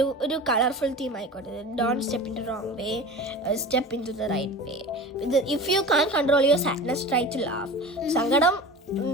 ഒരു കളർഫുൾ തീം ആയിക്കോട്ടെ. Don't step into wrong way, step into the right way. ഇത് if you can control your sadness try to laugh. സങ്കടം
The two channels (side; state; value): both; normal; correlation 0.34